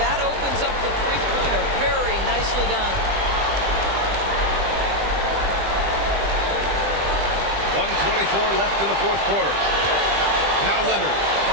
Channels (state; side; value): late; left; 20 ms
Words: that opens up the three-pointer. Very nicely done. 1:24 left in the fourth quarter. Now Leonard